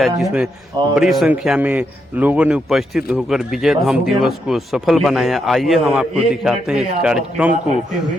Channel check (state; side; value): normal; both; correlation 0.80